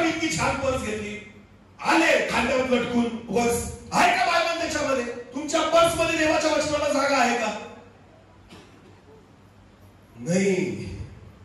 इतकी छान पर्स घेतली, आले खांद्यावर लटकून पर्स. आहे का बायबल त्याच्यामध्ये? तुमच्या पर्स मध्ये देवाच्या वचनाला जागा आहे का? नाही.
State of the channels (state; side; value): identical; both; correlation 1.00